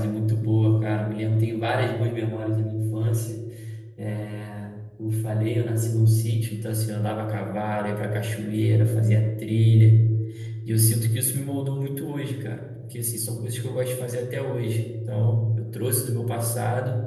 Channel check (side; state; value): both; identical; correlation 1.00